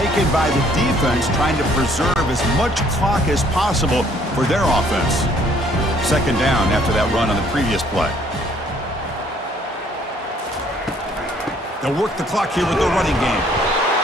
by the defense, trying to preserve as much clock as possible for their offense. Second down after that run on the previous play. They'll work the clock here with the running game.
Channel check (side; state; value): both; normal; correlation 0.62